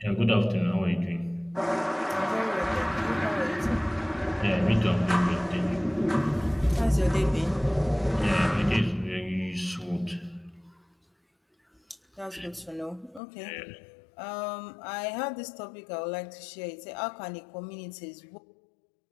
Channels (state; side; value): drops out; right; at 13.2 s